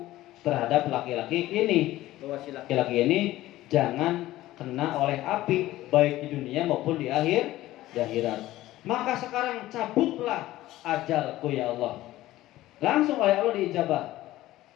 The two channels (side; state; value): right; quieter; 15.9 dB